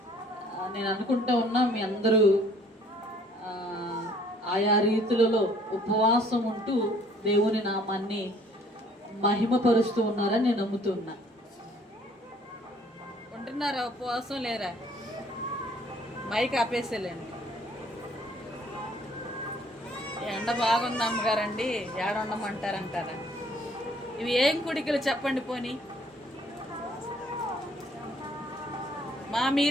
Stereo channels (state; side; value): normal; both; correlation 0.59